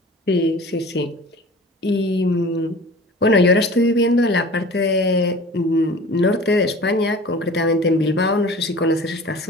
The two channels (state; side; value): normal; both; correlation 0.41